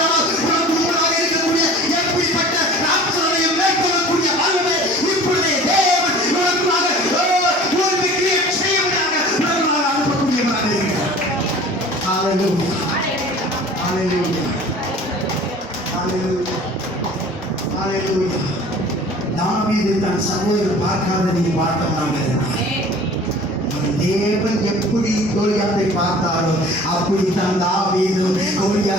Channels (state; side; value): normal; both; correlation 0.45